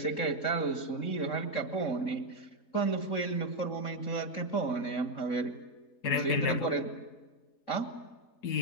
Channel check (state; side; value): late; right; 4.1 ms